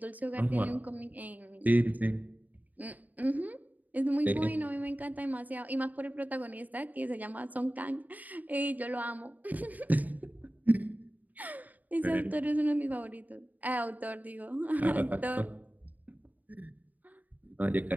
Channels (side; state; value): left; late; 0.079 ms